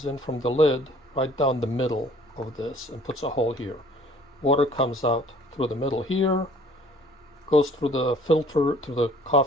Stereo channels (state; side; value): normal; both; correlation 0.54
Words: in from the lid right down the middle of this and puts a hole here. Water comes out through the middle here, goes through the filter, through the